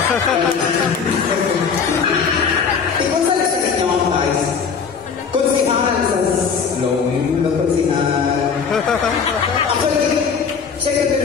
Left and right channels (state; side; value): quieter; right; 6.1 dB